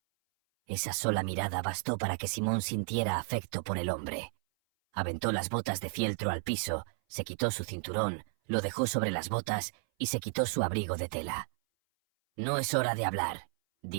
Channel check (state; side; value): silent; left; 56 dB below the other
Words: Esa sola mirada bastó para que Simón sintiera afecto por el hombre. Aventó las botas de fieltro al piso, se quitó su cinturón, lo dejó sobre las botas y se quitó su abrigo de tela. «No es hora de hablar»,